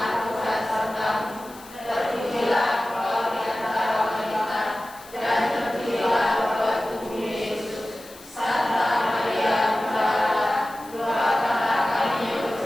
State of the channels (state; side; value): noise; left; hiss, 20 dB below the sound